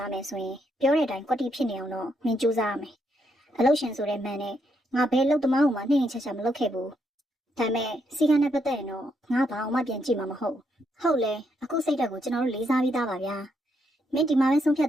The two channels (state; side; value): normal; both; correlation 0.77